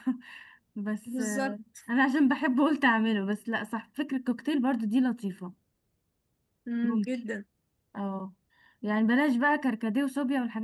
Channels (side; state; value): both; identical; correlation 1.00